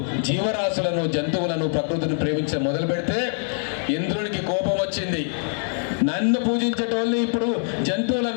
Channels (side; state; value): right; silent; 63 dB below the other